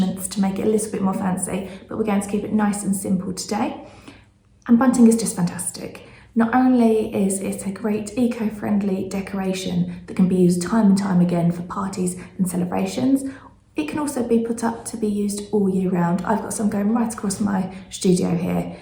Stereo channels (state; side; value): identical; both; correlation 1.00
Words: to make it a little bit more fancy, but we're going to keep it nice and simple today. And bunting is just fantastic. Not only is it a great eco-friendly decoration that can be used time and time again for parties and celebrations, it can also be put up to be used all year round. I've got some going right across my studio here,